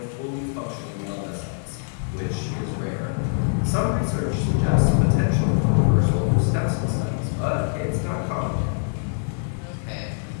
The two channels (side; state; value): right; silent; 63 dB below the other